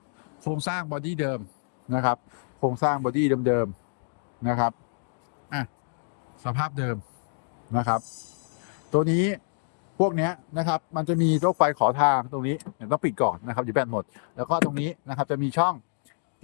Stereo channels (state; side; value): silent; right; 60 dB below the other